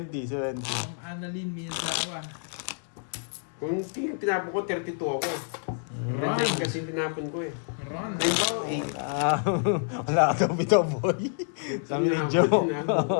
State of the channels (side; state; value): right; silent; 58 dB below the other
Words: Ma'am Annalyn Miyazawa. Kung king yung tinapon ko, 32 ako. Run! Nine kasi yung tinapon ko eh. Run! Halimbawa, Wala ka daw bitaw, boy. Sabi ni Joe.